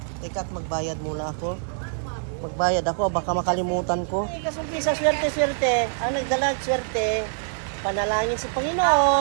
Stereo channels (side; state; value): left; silent; digital silence